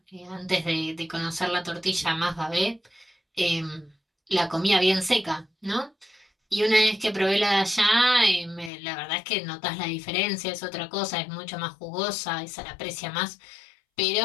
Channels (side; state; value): right; drops out; at 8.7 s